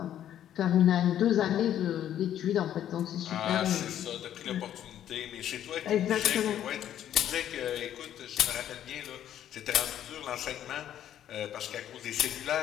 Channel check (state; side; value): quieter; right; 10.9 dB